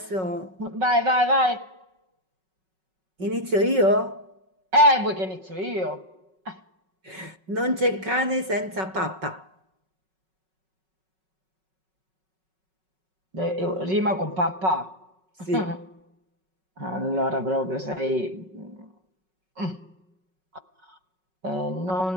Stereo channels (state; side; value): late; left; 5.4 ms